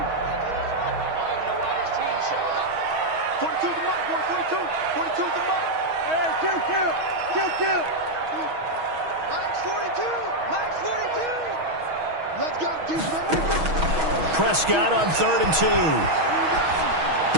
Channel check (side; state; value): left; late; 6.3 ms